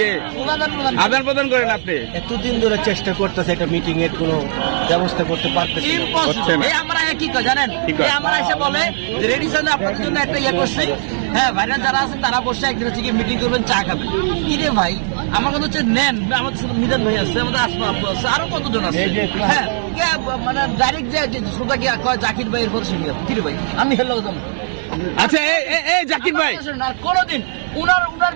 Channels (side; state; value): left; silent; 62 dB below the other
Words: আদান প্রদান করেন? আপনি এতদিন ধরে চেষ্টা করতেছে একটা মিটিং এর কোনো ব্যবস্থা করতে পারতেছে না। আমরা কি কয় জানেন, আমরা এসে বলে যে রেডি সামনে আপনাদের জন্য একটা ইয়ে করছি, হ্যাঁ ভাইরা যারা আছেন তারা বসে একদিন হচ্ছে মিটিং করবেন, চা খাবেন। কি রে ভাই, আমার কথা হচ্ছে নেন, আমাদের সাথে মিজান ভাই আছে, আমাদের আসমা আপু আছে, আরো কতজন আছে। হ্যাঁ মানে ডাইরেক্ট যে শ্রোতা কি কয় জাকির ভাই এরপর শুনি কি রে ভাই, আমি হেলো দাম। আচ্ছা এই জাকির ভাই, কোনোদিন উনার